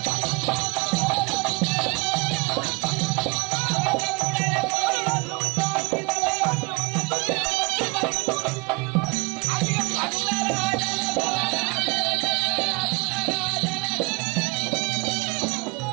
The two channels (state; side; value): quieter; left; 28.8 dB